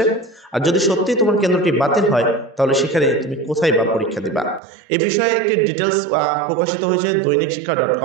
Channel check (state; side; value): drops out; left; at 4.6 s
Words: আর যদি সত্যি তোমার কেন্দ্রটি বাতিল হয় তাহলে সেখানে তুমি কোথায় বা পরীক্ষা দিবা, এই বিষয়ে একটি ডিটেলস প্রকাশিত হয়েছে দৈনিক